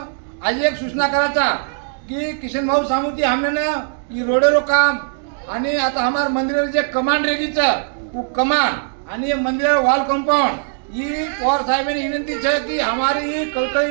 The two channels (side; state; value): left; silent; digital silence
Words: आज एक सूचना करायचा की किशन भाऊ सांगू की हमने ना ही रोडेरो काम आणि आता हमार मंदिर जे कमान रेगीचं कमान आणि मंदिर वॉल कंपाउंड ही पवार साहेबांनी विनंती है कि हमारी कळकळी